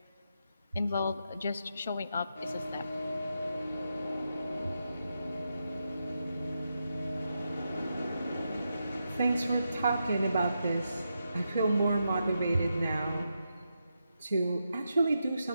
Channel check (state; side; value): inverted; both; correlation -0.85